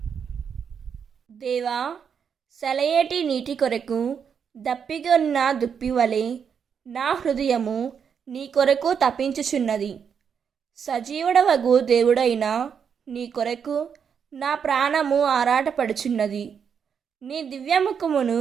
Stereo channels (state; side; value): quieter; left; 7.1 dB